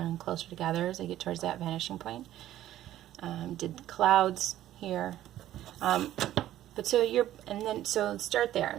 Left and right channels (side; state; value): left; quieter; 13.1 dB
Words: and closer together as they get towards that vanishing point. Did clouds here. But so start there,